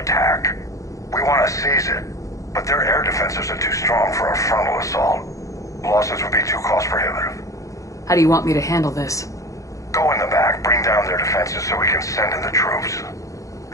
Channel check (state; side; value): late; right; 0.16 ms